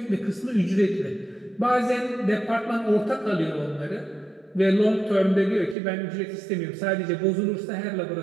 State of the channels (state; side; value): drops out; left; at 5.8 s